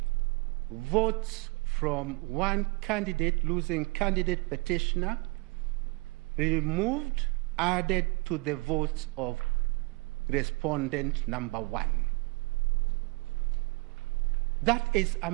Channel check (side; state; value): left; quieter; 26.4 dB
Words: votes from one candidate, losing candidate petitioner, removed, added to the votes of respondent number 1. That is a